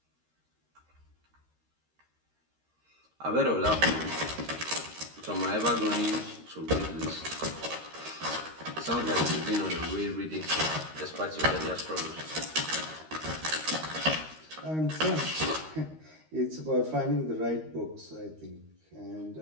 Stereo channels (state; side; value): late; left; 13 ms